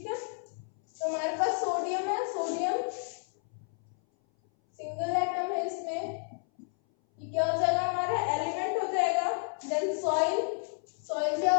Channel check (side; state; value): right; silent; 57 dB below the other